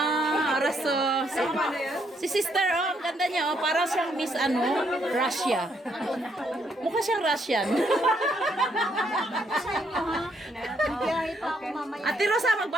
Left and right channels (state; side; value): normal; both; correlation 0.73